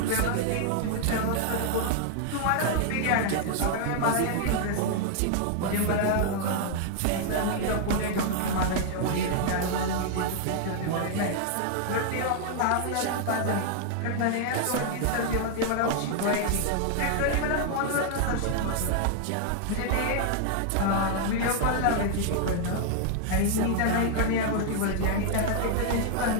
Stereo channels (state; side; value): different; both; correlation 0.00